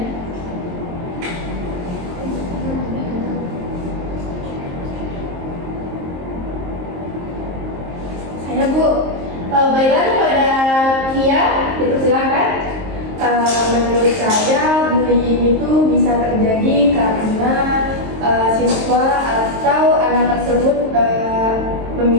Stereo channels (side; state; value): left; late; 23 ms